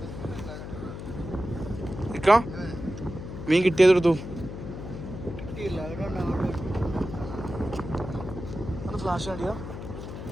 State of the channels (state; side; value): noise; left; hum, 9 dB below the sound